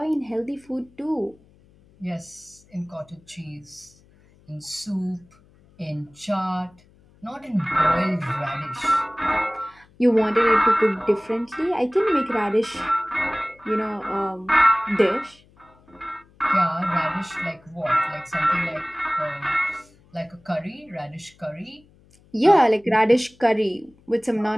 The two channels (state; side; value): noise; left; hum, 29 dB below the sound